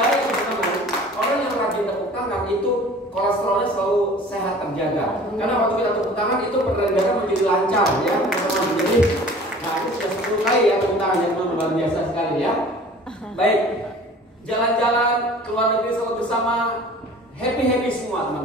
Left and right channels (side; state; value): both; normal; correlation 0.46